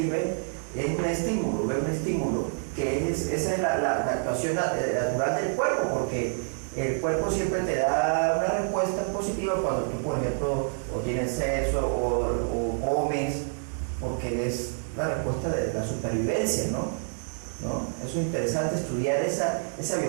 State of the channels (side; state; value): left; silent; 60 dB below the other